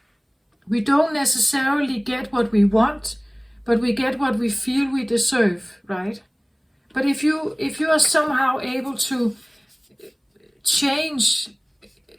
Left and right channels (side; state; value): both; identical; correlation 1.00